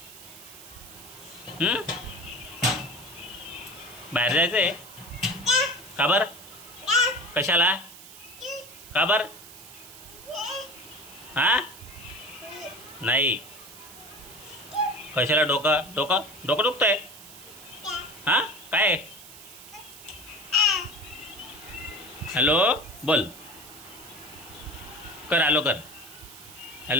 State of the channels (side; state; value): right; noise; hiss, 17 dB below the sound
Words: बाहेर जायचं आहे का बरं? कशाला? का बरं? हां नाही. कशाला? डोकं डोकं डोकं दुखतंय? हां काय? हॅलो बोल. कर हॅलो कर.